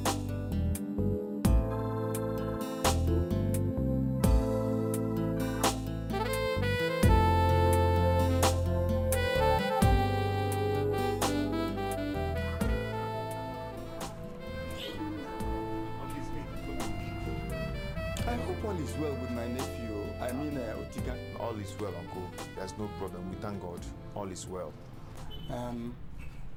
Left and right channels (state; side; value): identical; both; correlation 1.00